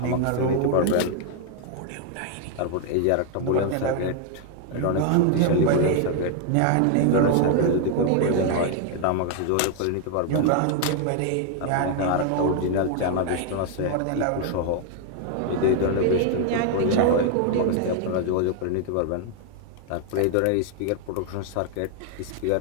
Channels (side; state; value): both; different; correlation 0.00